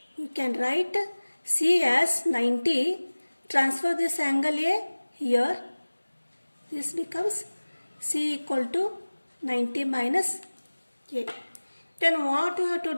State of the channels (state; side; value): inverted; both; correlation -1.00